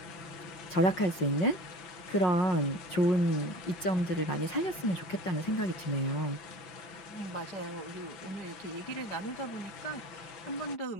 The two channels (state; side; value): late; right; 5.5 ms